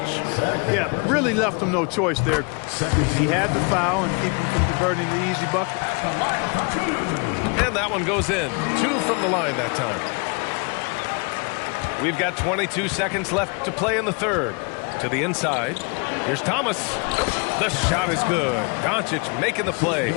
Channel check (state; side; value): quieter; right; 33.2 dB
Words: Yeah, really left him no choice there. He had the foul and keep him from converting the easy bucket. And that one goes in. 2 from the line that time. We've got 22 seconds left to play in the third. To the inside. Here's Thomas. The shot is good. Doncic making the play.